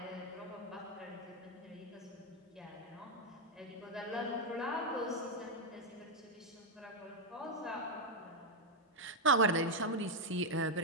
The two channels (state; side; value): normal; both; correlation 0.01